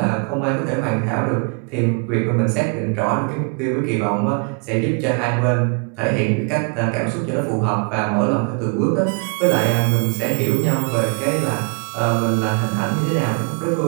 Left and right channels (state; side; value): quieter; left; 35.5 dB